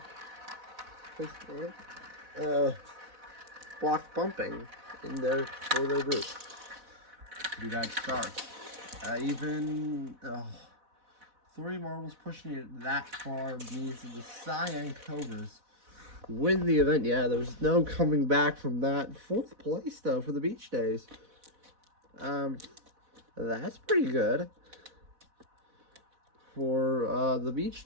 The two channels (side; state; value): left; late; 4.1 ms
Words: Block bumping in there for their group. Pretty bad start. Even 3 marbles pushing it that far means that the Cyan Cobras win the event. Yeah, there's no coming back from that. 4th place, though, for the Beach Days. That's pretty good for the Beach